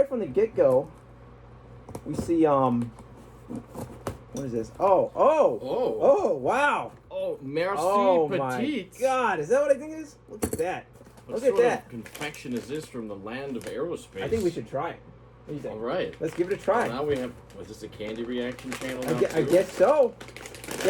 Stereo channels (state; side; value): identical; both; correlation 1.00